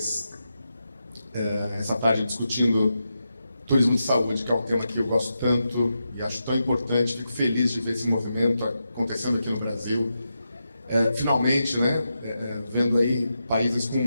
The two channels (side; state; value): both; inverted; correlation -0.87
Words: essa tarde discutindo turismo de saúde, que é um tema que eu gosto tanto e acho tão importante. Fico feliz de ver esse movimento acontecendo aqui no Brasil. Finalmente, né, vendo aí países com